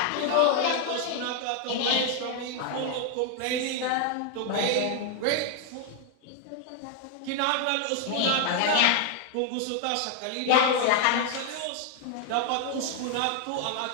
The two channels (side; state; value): both; different; correlation 0.00